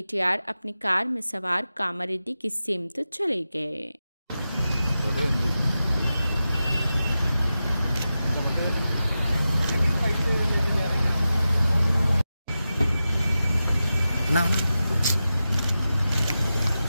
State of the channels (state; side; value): inverted; both; correlation -0.92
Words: अपनी कार में सवार कामारेड्डी की सिमत चले गए। ना